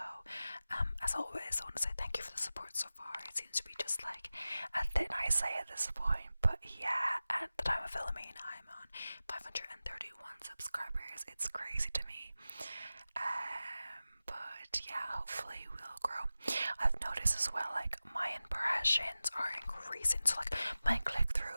As always, I want to say thank you for the support so far. It seems to be just like a thin ice at this point, but yeah, at the time of filming, I'm on 531 subscribers. It's crazy to me. But yeah, hopefully we'll grow. I've noticed as well, like my impressions are increasing, so like my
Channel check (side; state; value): both; inverted; correlation -0.95